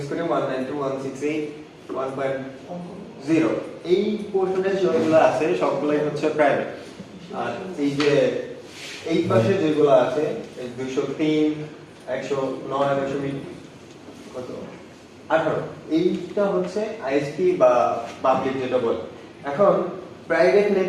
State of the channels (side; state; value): both; identical; correlation 1.00